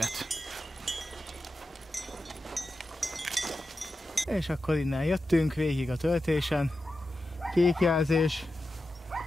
És akkor innen jöttünk végig a töltésen. Kék jelzés.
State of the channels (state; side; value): normal; both; correlation 0.91